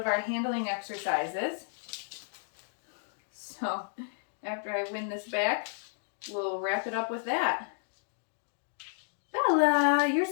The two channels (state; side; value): silent; right; digital silence